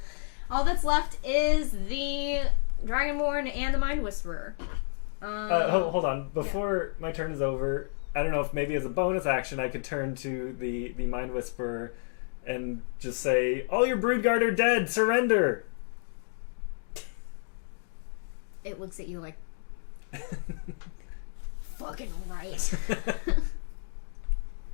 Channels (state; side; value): silent; right; digital silence